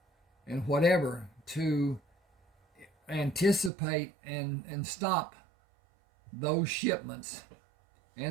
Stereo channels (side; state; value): left; drops out; at 3.7 s